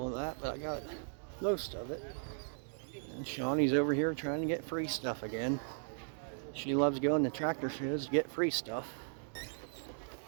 of that, but I got most of it. And Shawnee's over here trying to get free stuff again. She loves going to tractor shows to get free stuff.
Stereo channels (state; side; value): silent; left; digital silence